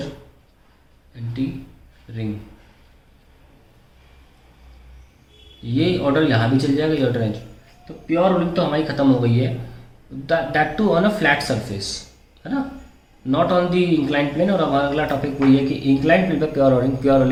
एंड टी रिंग। ये ऑर्डर यहाँ भी चल जाएगा, ये ऑर्डर। तो प्योर रोलिंग तो हमारी ख़त्म हो गई है, that to on a flat surface, है ना, not on the incline plane. और हमारा अगला टॉपिक वही है कि इंक्लाइन प्लेन पर प्योर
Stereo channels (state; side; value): identical; both; correlation 1.00